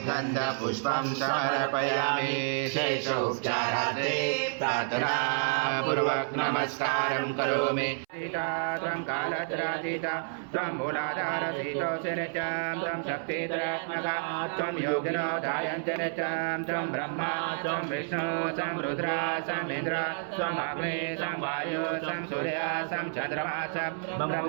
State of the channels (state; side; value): silent; left; 58 dB below the other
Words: गन्धपुष्पं समर्पयामि शेषोपचारार्थे प्रार्थनापूर्वक नमस्कारं करोमि त्वं कालत्रातीता त्वं मूलाधारसीतो नित्यं त्वं शक्तिधरात्मका त्वं योगिनो ध्यायन्ति नित्यं त्वं ब्रह्मा त्वं विष्णु त्वं रुद्र त्वं इन्द्र त्वं अग्नि त्वं वायु त्वं सूर्य त्वं चन्द्रमा त्वं